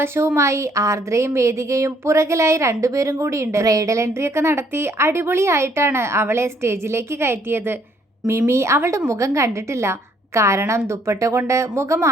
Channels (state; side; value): normal; both; correlation 0.65